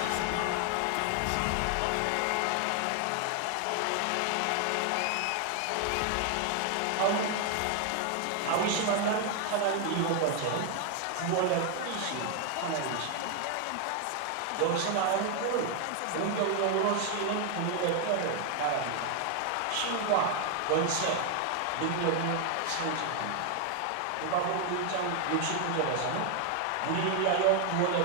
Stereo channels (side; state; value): both; different; correlation 0.00